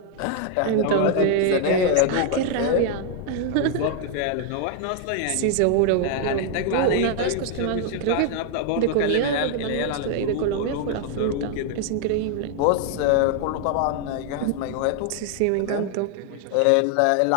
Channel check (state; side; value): different; both; correlation 0.00